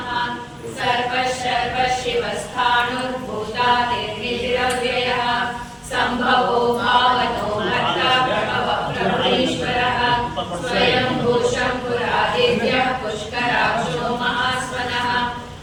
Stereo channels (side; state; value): both; identical; correlation 1.00